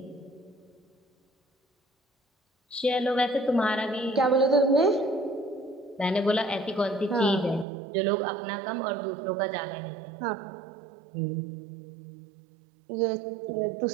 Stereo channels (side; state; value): left; drops out; at 7.7 s